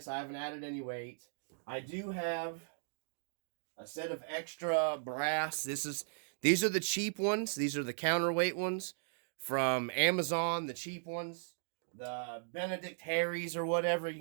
I haven't added any weight. I do have a set of extra brass. These are the cheap ones. These are the counterweight ones from Amazon, the cheap ones. The Benedict Harry's or whatever you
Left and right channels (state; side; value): silent; left; digital silence